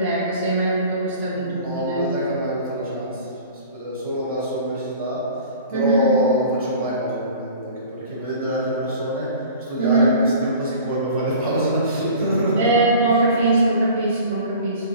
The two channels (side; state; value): both; inverted; correlation -0.43